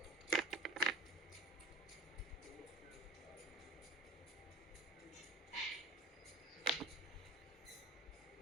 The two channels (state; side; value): normal; both; correlation 0.41